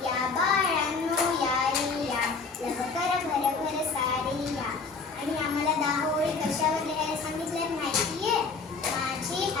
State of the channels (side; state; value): right; quieter; 4.6 dB